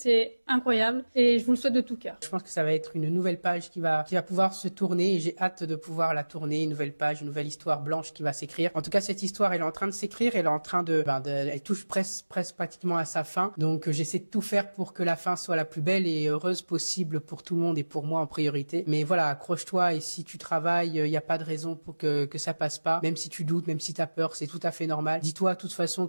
incroyable et je vous le souhaite de tout cœur. Je pense que ça va être une nouvelle page qui va pouvoir se tourner et j'ai hâte de pouvoir la tourner, une nouvelle page, une nouvelle histoire blanche qui va s'écrire. En tout cas, cette histoire, elle est en train de s'écrire, elle est en train elle touche presque pratiquement à sa fin. Donc, j'essaie de tout faire pour que la fin soit la plus belle et heureuse possible pour tout le monde et pour moi en priorité. Mais voilà, accroche-toi et si tu travailles, il n'y a pas de raison pour que ça passe pas. Même si tu doutes, même si t'as peur, c'est tout à fait normal. Dis-toi de toute façon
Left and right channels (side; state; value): both; inverted; correlation -1.00